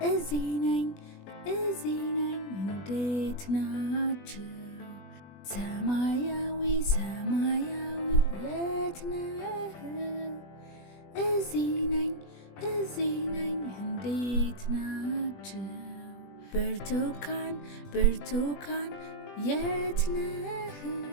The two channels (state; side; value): late; right; 20 ms